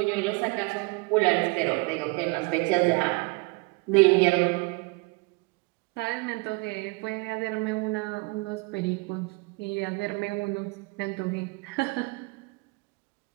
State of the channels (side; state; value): left; quieter; 28.2 dB